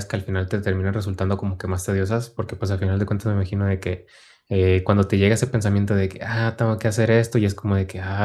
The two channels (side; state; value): both; identical; correlation 1.00